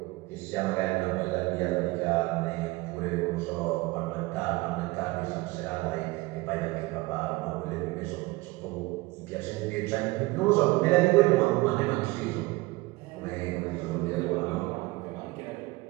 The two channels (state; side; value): quieter; left; 21.9 dB